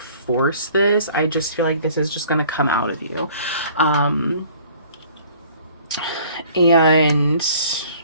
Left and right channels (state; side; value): inverted; both; correlation -0.53